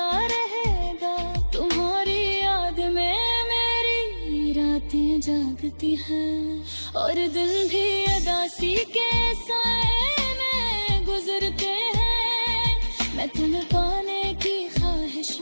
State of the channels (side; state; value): both; inverted; correlation -1.00